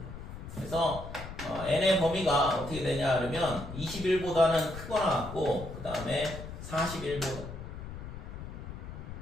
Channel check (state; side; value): noise; left; rumble, 10 dB below the sound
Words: 그래서 n의 범위가 어떻게 되냐 그러면 21보다는 크거나 같고 그 다음에 41보다